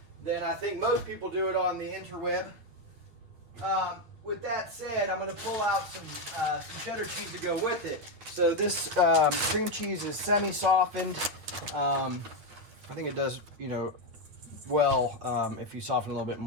than I think most people do it on the interweb. With that said, I'm going to pull out some cheddar cheese to go with it. So this cream cheese is semi-softened. I think it does, well if you soften a little bit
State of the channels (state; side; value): late; left; 9.4 ms